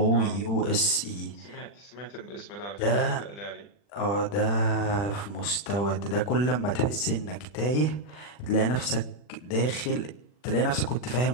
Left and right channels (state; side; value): late; right; 40 ms